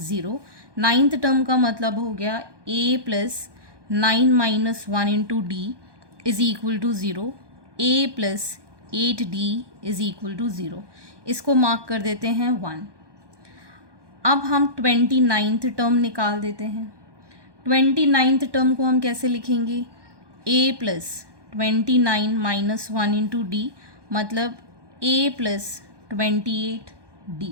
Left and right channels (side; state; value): left; late; 1.2 ms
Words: 0. 9th term का मतलब हो गया A plus 9 minus 1 into D is equal to 0. A plus 8D is equal to 0. इसको मार्क कर देते हैं 1. अब हम 29th टर्म निकाल देते हैं. 29th टर्म को हम कैसे लिखेंगे? A plus 29 minus 1 into D मतलब A प्लस 28D.